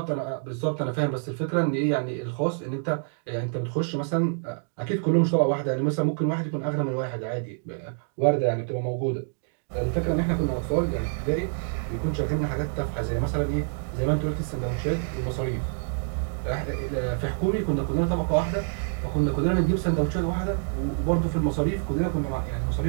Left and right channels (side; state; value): left; silent; 58 dB below the other